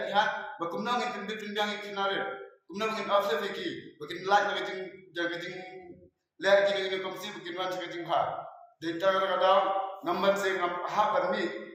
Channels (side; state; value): both; identical; correlation 1.00